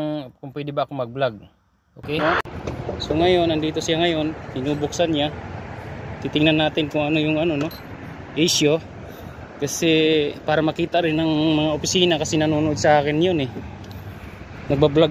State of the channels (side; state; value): both; identical; correlation 1.00